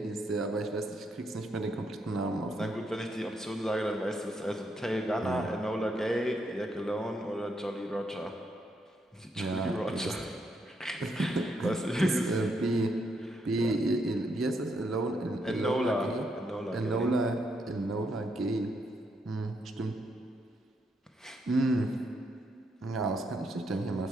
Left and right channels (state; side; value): normal; both; correlation 0.77